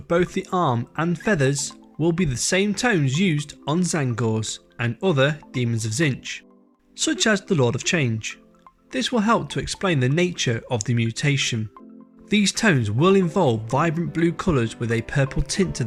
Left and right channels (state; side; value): identical; both; correlation 1.00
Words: both the arm and feathers will be the same tones used on Tzaangors and other Demons of Tzeentch, such as the Lord of Change. This will help to explain the nature of the mutation. These tones will involve vibrant blue colours with a purple tint to